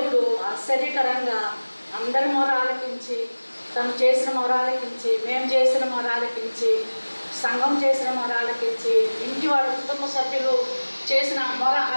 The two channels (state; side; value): inverted; both; correlation -1.00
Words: ఆశ్చర్యకరంగా అందరి మొర ఆలకించి, తను చేసిన మొర ఆలకించి, మేము చేసిన మొర ఆలకించి, సంఘం చేసిన మొర ఆలకించి, ఇంటి వాళ్ళ కుటుంబ సభ్యులు చేసిన మొర